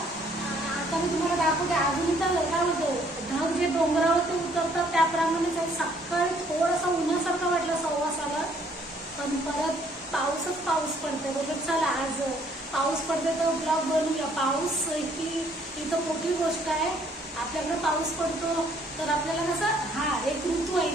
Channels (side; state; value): both; normal; correlation 0.63